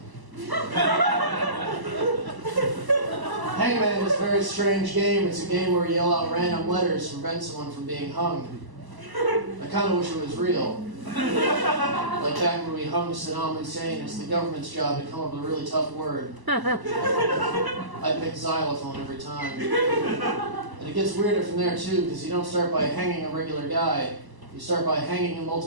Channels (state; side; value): late; left; 1.1 ms